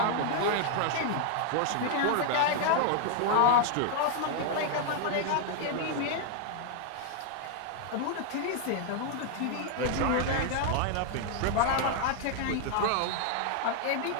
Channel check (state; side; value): different; both; correlation 0.00